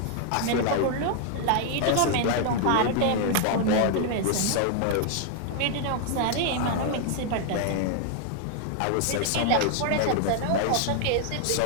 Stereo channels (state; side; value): different; both; correlation 0.00